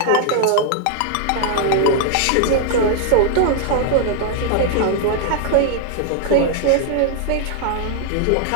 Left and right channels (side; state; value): both; different; correlation 0.00